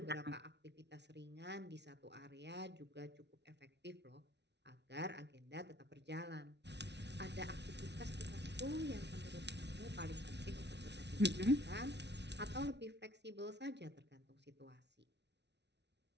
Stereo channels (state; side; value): late; left; 0.50 ms